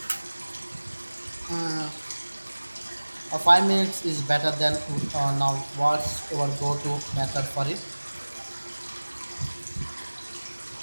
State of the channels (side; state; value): both; inverted; correlation -1.00